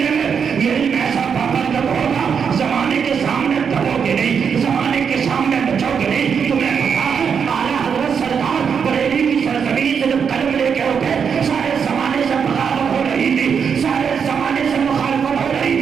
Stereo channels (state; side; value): quieter; left; 6.8 dB